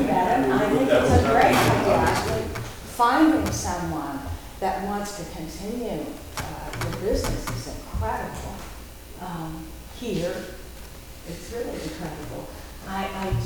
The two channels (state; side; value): identical; both; correlation 1.00